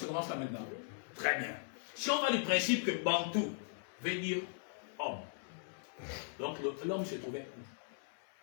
commence là maintenant. Très bien. Si on va du principe que Bantou veut dire homme, donc l'homme se trouvait où?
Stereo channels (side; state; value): right; silent; 52 dB below the other